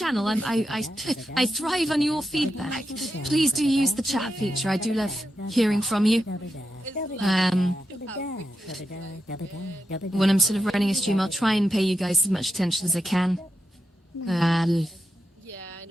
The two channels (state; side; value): normal; both; correlation 0.87